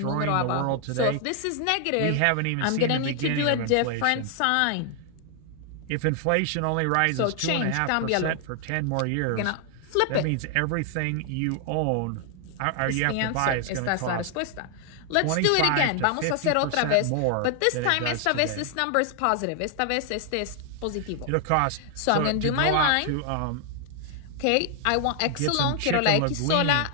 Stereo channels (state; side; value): different; both; correlation 0.00